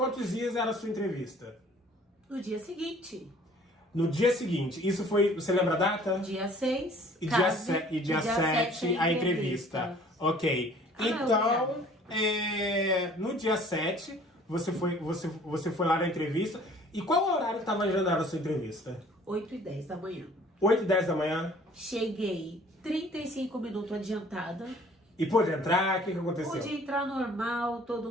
dias era a sua entrevista? No dia seguinte. No dia seguinte. Isso foi... Você lembra a data? Dia 6. E dia 7 a entrevista. Ok. Então, no dia 7, você foi lá na entrevista. E qual o horário que estava agendado a sua entrevista? 8h10 da manhã. 8h10 da manhã? Cheguei 35 minutos adiantada. E pôde entrar? O que aconteceu? Pude entrar normal, todo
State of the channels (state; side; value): normal; both; correlation 0.53